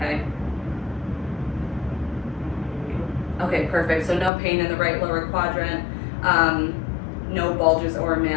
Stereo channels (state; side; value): drops out; right; at 4.3 s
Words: Okay, perfect. So no pain in the right lower quadrant. No bulges or